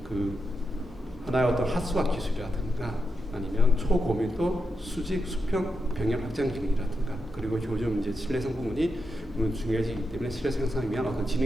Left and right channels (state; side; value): normal; both; correlation 0.86